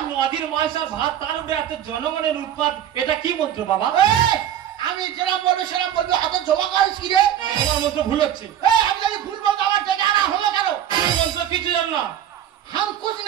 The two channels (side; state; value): left; quieter; 10.7 dB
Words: নদীর মাছ আর ভাত, তার উপরে এত জনগণের উৎপাদ, এটা কি মন্ত্র বাবা? আমি যেরাম বলবো সেরাম বলবো, হাতে জমা করিস কি রে? তোমার মন্ত্র ভুল হচ্ছে। আমি যদি ভুল বলতো আমার ডেকে আনা হলো কেন? তুমি মন্ত্র কিছু জান না। হাম কুছ